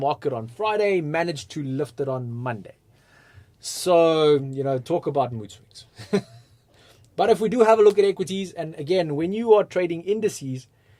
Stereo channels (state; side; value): identical; both; correlation 1.00